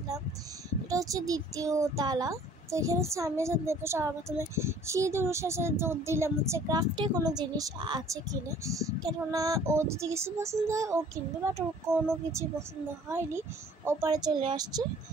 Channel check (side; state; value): both; normal; correlation 0.53